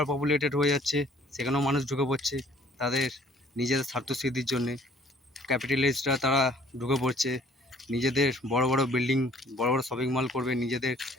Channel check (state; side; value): normal; both; correlation 0.57